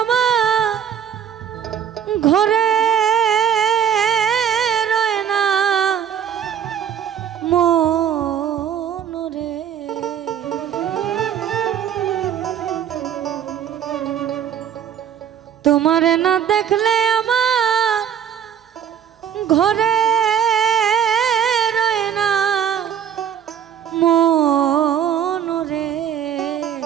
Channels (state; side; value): quieter; left; 9.1 dB